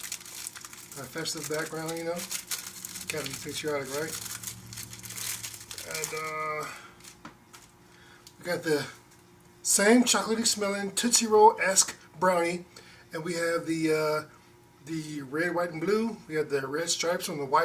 A festive background, you know. Gotta be patriotic, right? And we got the same chocolatey smelling Tootsie Roll-esque brownie. And we have the red, white, and blue. We have the red stripes on the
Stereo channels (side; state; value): both; identical; correlation 1.00